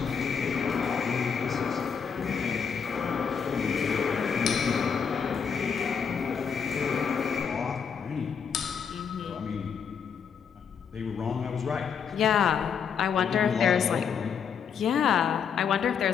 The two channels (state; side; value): quieter; right; 6.8 dB